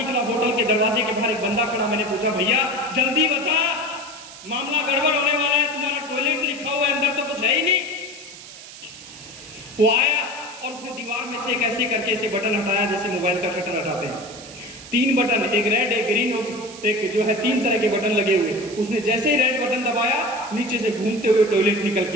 होटल के दरवाजे के बाहर एक बंदा खड़ा। मैंने पूछा भैया जल्दी बता, मामला गड़बड़ होने वाला है, तुम्हारा टॉयलेट लिखा हुआ है, अंदर तो कुछ है ही नहीं। वो आया और उसने दीवार में से एक ऐसे करके ऐसे बटन हटाया जैसे मोबाइल का शटर हटाते हैं। 3 बटन, एक रेड, एक ग्रीन और एक जो है 3 तरह के बटन लगे हुए। उसने जैसे ही रेड बटन दबाया, नीचे से घूमते हुए टॉयलेट निकल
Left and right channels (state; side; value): noise; right; hiss, 16 dB below the sound